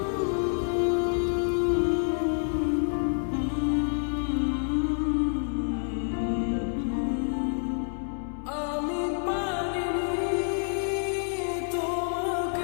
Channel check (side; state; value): right; silent; 59 dB below the other